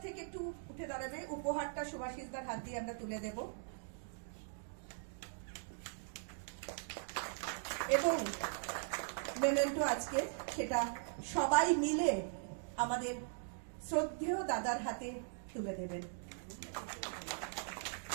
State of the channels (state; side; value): silent; left; digital silence